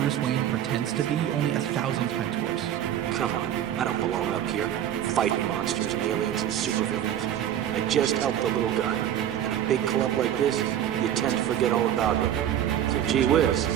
Wayne pretends to be, only 1,000 times worse. Come on, I don't belong up here, fighting monsters and aliens and supervillains. I just helped the little guy. In a big club like this, you tend to forget all about him. So gee whiz,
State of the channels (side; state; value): left; quieter; 10.8 dB